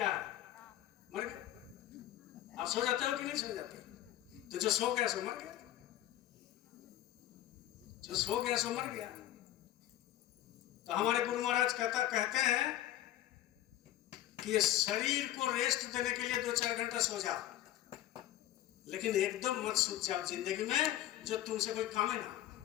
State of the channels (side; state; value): right; quieter; 13.5 dB